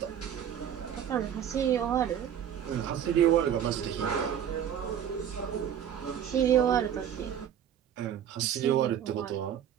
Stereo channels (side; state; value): left; quieter; 9.5 dB